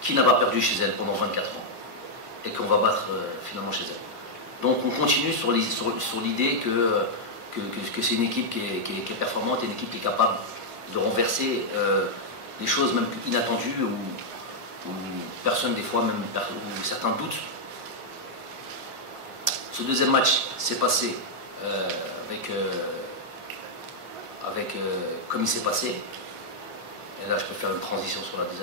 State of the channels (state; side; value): late; left; 1.4 ms